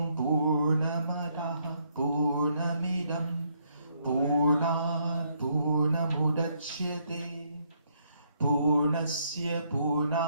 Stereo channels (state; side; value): inverted; both; correlation -0.72